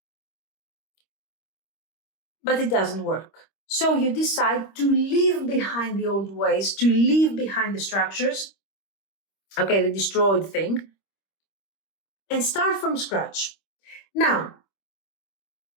but it doesn't work. So you decide to leave behind the old ways, to leave behind the structures, okay, the destroyed thing, and start from scratch. Now,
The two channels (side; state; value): right; late; 25 ms